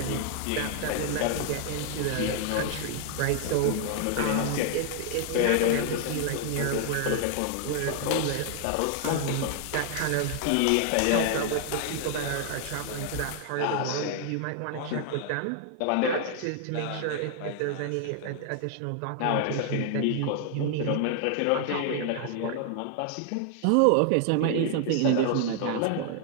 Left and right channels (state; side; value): different; both; correlation 0.00